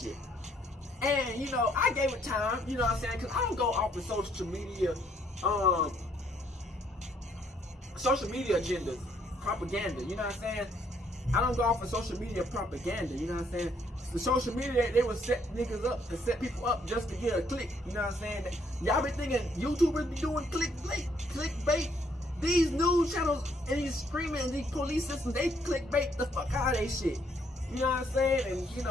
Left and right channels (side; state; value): both; normal; correlation 0.68